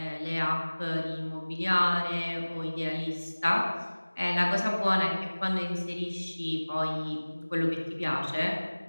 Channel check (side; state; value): both; inverted; correlation -1.00